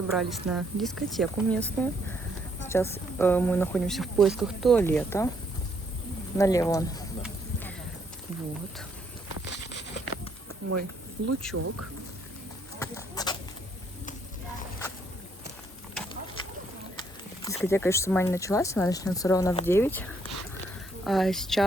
на дискотеку местную. Сейчас мы находимся в поисках туалета. Налево он. Вот. Мой лучок. Дискотека еще сама не началась, она начнется ровно в 9. А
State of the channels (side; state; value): both; normal; correlation 0.70